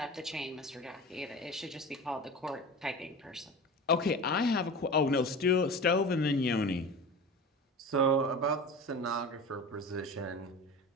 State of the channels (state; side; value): normal; both; correlation 0.32